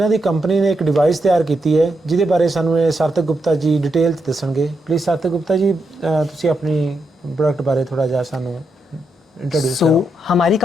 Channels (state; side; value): normal; both; correlation 0.82